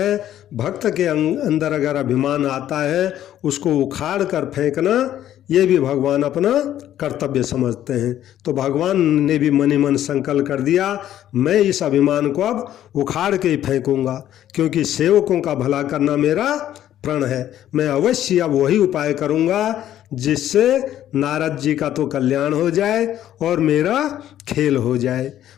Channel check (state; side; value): quieter; right; 11.8 dB